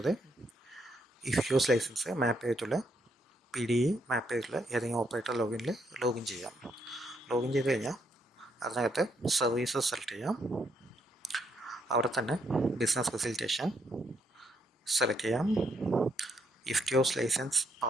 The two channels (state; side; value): normal; both; correlation 0.75